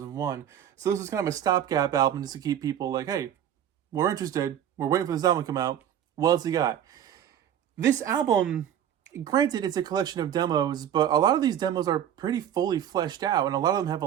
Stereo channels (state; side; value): quieter; left; 10.0 dB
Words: So this was kind of a stopgap album just to keep people like, hey, we're interested. We're waiting for this album to come out. What else you got? This album, granted, it's a collection of demos, but a lot of these demos are pretty fully fleshed out, and a lot of them have a